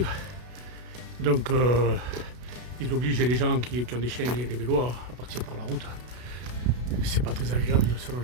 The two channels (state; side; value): late; left; 32 ms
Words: Donc, ils obligent les gens qui ont des chiens et des vélos à partir par la route. C'est pas très agréable de